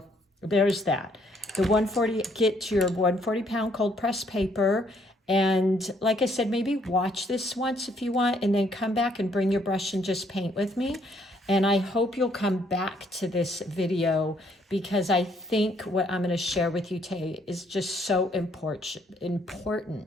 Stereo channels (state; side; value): normal; both; correlation 0.68